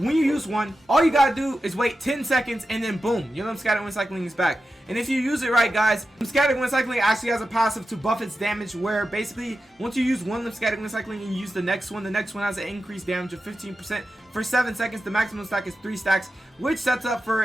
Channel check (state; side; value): normal; both; correlation 0.91